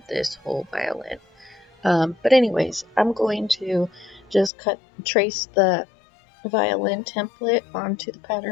this whole violin. But anyways, I'm going to just trace the violin template onto the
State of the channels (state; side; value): drops out; right; at 4.5 s